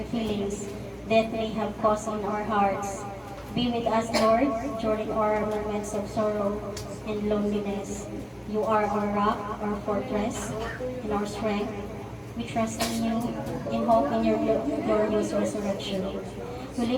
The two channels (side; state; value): both; identical; correlation 1.00